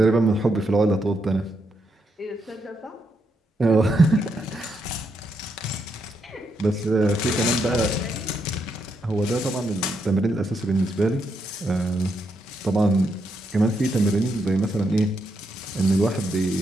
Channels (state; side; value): normal; both; correlation 0.80